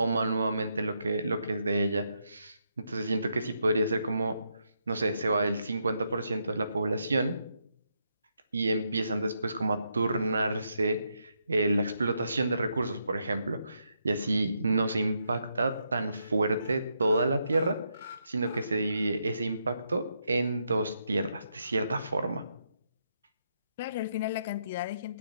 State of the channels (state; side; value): inverted; both; correlation -0.80